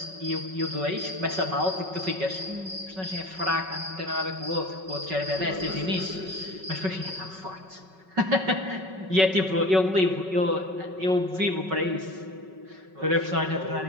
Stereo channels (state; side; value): late; left; 5.3 ms